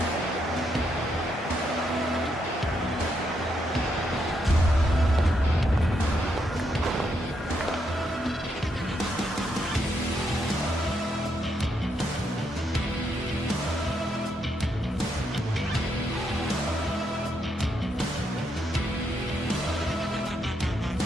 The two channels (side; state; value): both; normal; correlation 0.78